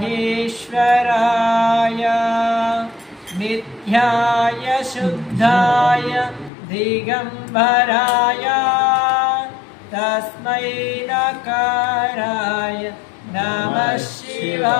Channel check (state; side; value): drops out; right; at 6.5 s